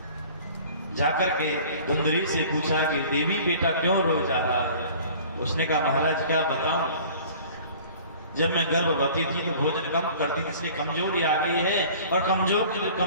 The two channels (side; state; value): both; inverted; correlation -0.47